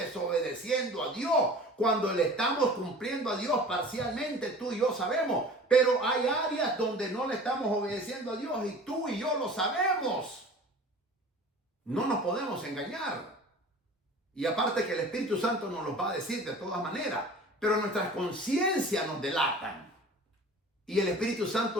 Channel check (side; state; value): both; normal; correlation 0.42